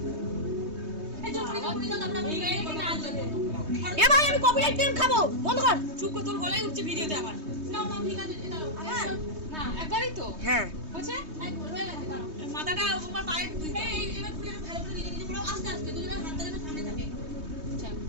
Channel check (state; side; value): late; left; 3.2 ms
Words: এই চুপ করে দাও, আমরা ভিডিও এডিট না আসবে। এ ভাই, আমি কপিরাইট ক্লেম খাবো, বন্ধ কর। চুপ কর, তোর গলায় উঠছে ভিডিওতে আমার। না না ঠিক আছে, এটা না একবারই তো হ্যাঁ, হচ্ছে একবার হয়ে গেছে। দাঁড়াও, মাথাটা আমার পায়ে এই এবার পুরো ভালো করে নিজে নিজে পুরো আস্তে আস্তে দুজনের হাত ধরে সামনে থাকে। আচ্ছা